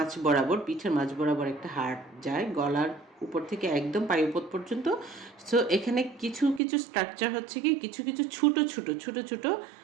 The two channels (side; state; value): left; drops out; at 6.6 s